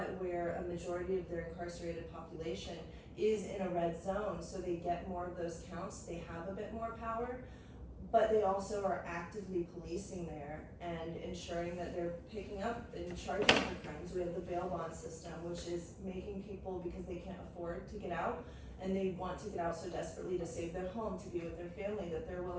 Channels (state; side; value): identical; both; correlation 1.00